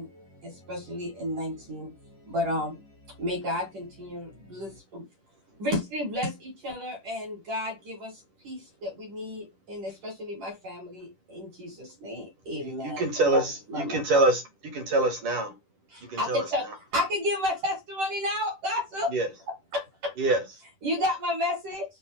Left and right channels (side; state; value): left; late; 10 ms